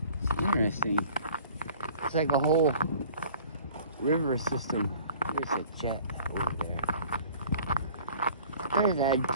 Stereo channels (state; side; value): inverted; both; correlation -0.50